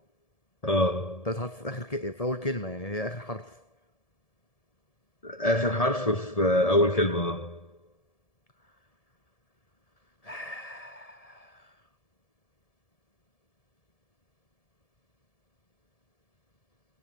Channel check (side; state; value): right; late; 1.7 ms